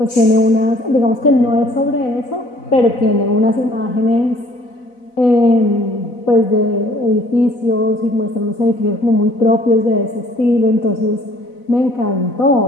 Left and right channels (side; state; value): right; late; 4.0 ms